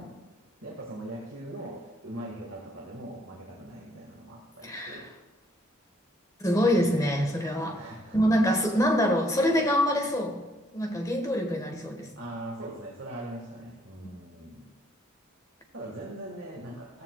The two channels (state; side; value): normal; both; correlation 0.67